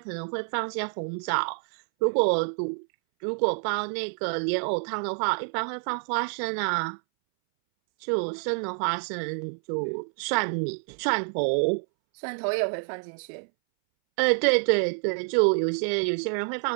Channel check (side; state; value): left; silent; 60 dB below the other